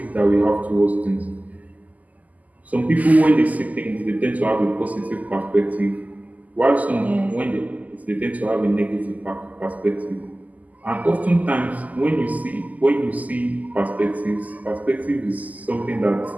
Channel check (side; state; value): left; late; 0.078 ms